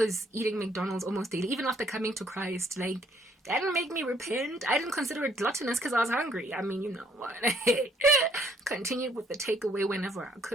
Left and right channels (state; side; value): normal; both; correlation 0.65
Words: eating McDonald's almost daily, even after coming to Christ. Like, that didn't make me repent. I didn't consider it gluttonous because I was hungry. I mean, you know what? Continued with the takeaway whenever I